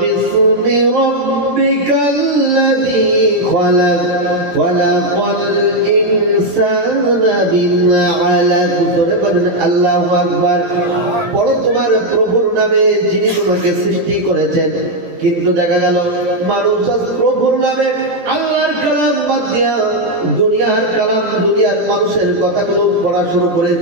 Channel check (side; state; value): left; late; 17 ms